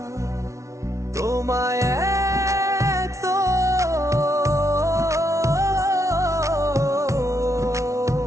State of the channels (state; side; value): late; left; 0.14 ms